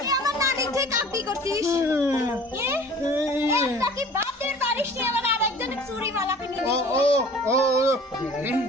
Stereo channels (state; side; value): normal; both; correlation 0.46